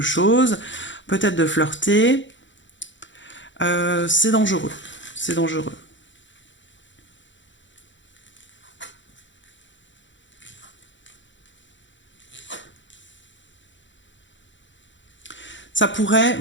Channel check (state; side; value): late; right; 0.54 ms